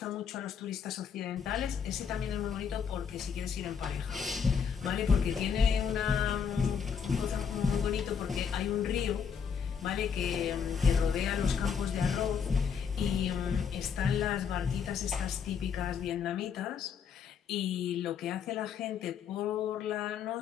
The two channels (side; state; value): right; quieter; 6.9 dB